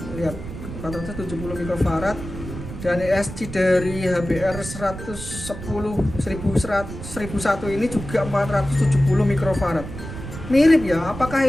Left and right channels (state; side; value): noise; right; rumble, 10 dB below the sound